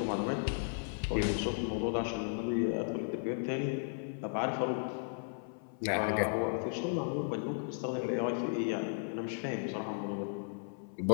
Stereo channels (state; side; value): silent; right; 54 dB below the other